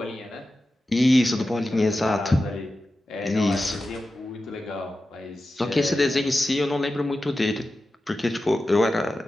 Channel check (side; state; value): both; normal; correlation 0.93